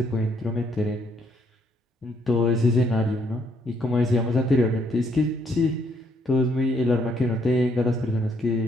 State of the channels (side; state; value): both; normal; correlation 0.70